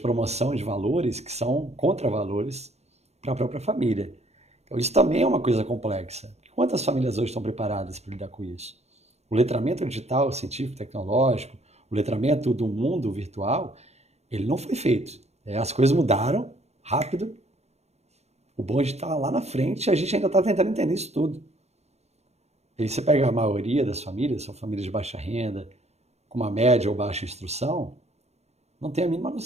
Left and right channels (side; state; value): left; late; 0.31 ms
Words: promoção de valores que são contravalores para a própria família. Então, isso também é uma coisa complexa. Quantas famílias hoje estão preparadas para lidar com isso? O letramento digital, científico, tecnológico, o letramento do mundo virtual, ele não foi feito. As coisas mudaram rápido, o bonde está lá na frente e a gente ainda está tentando entender isso tudo. E aí você pega a maioria das famílias, são famílias de baixa renda, com uma média ou baixa instrução, não tem a mínima